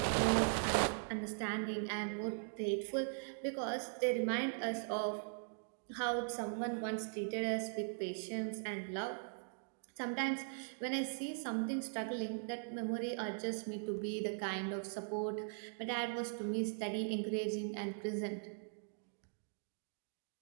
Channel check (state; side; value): silent; left; digital silence